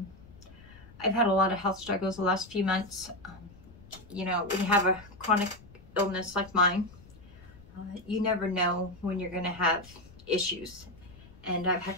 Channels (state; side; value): noise; left; rumble, 21 dB below the sound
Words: had a lot of health struggles the last few months. You know, when you have a chronic illness like mine, you never know when you're going to have issues, and I've had